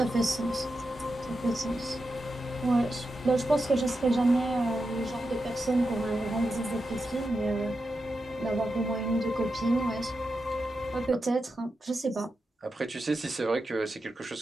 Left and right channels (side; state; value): both; normal; correlation 0.88